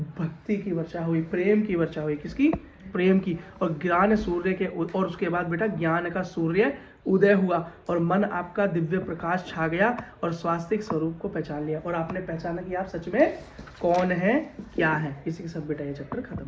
भक्ति की वर्षा हुई, प्रेम की वर्षा हुई, किसकी, प्रेम की। और ज्ञान सूर्य के, और उसके बाद बेटा ज्ञान का सूर्य उदय हुआ और मन आपका दिव्य प्रकाश छा गया और स्वास्तिक स्वरूप को पहचान लिया और आपने पहचाना कि आप सच में कौन है, क्या है। इसी के साथ बेटा ये चैप्टर खत्म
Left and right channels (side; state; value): both; identical; correlation 1.00